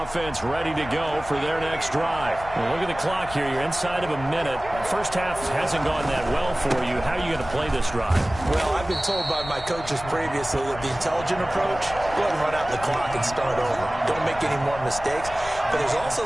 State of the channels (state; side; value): noise; left; rumble, 14 dB below the sound